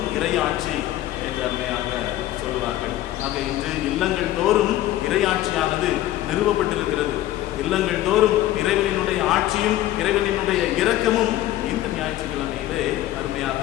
இறையாட்சி என்று அருமையாக சொல்லுவார்கள். ஆக இன்று இல்லங்கள் தோறும் இறையாட்சியானது நிறுவப்பட்டிருக்கிறது. இல்லங்கள் தோறும் இறைவனினுடைய ஆட்சியும் இறைவனினுடைய இரக்கமும் இந்த ஞாயிற்றுக்கிழமையிலே அருமையாக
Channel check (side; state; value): right; quieter; 14.4 dB